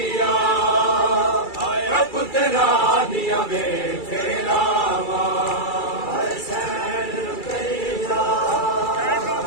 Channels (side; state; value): right; late; 2.3 ms